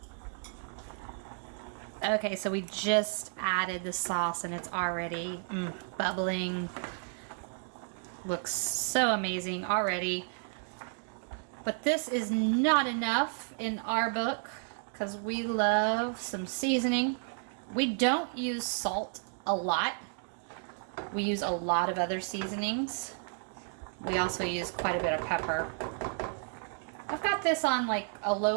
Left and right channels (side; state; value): left; silent; 56 dB below the other